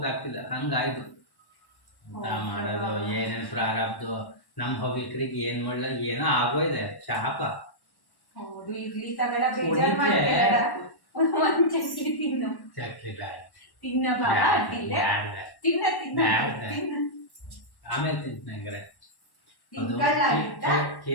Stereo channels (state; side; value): late; right; 1.1 ms